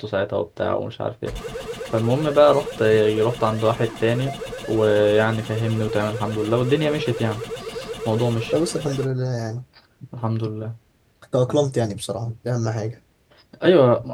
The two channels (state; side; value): identical; both; correlation 1.00